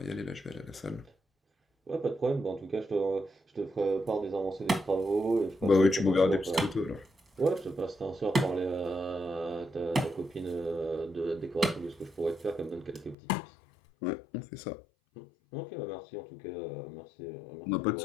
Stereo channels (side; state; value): right; drops out; at 13.2 s